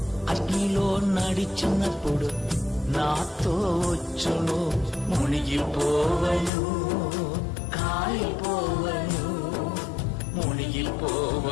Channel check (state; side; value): drops out; right; at 6.5 s